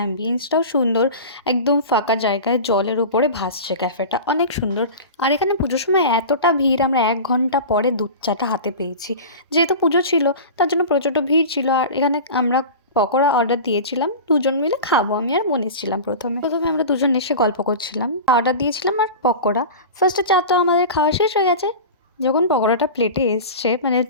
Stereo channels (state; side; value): inverted; both; correlation -0.32